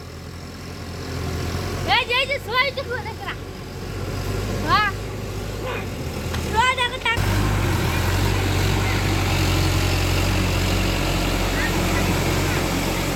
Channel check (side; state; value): both; identical; correlation 1.00